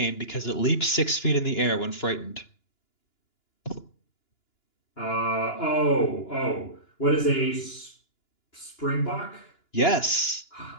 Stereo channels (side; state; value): right; late; 2.9 ms